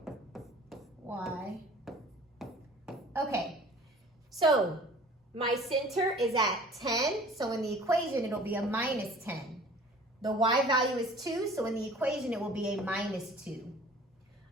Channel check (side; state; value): both; normal; correlation 0.47